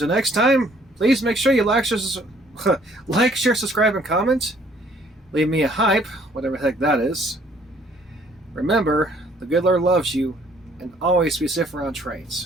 next time, please make sure you like, share, subscribe, and comment. Leave me a hype, whatever the heck that is. Remember, the good Lord loves you, and always be safe around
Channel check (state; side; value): normal; both; correlation 0.61